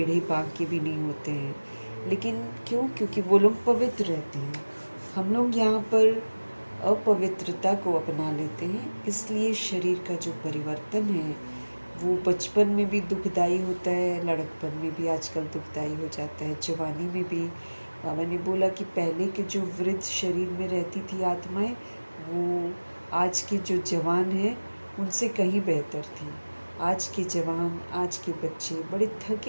बांके भी नहीं होते हैं। लेकिन क्यों? क्योंकि वो लोग पवित्र रहते हैं। हम लोग यहाँ पर अपवित्रता को अपना लेते हैं, इसलिए शरीर का जो परिवर्तन है वो बचपन में भी दुखदाई होता है, लड़कपन में भी आजकल दुखदाई हो जाता है, जवानी में भी। बाबा ने बोला कि पहले के जो वृद्ध शरीर में रहती थी आत्माएं, वो आज के जो जवान हैं उनसे कहीं बेहतर थी। आज के जवान, आज के बच्चे बड़े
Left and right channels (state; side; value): inverted; both; correlation -1.00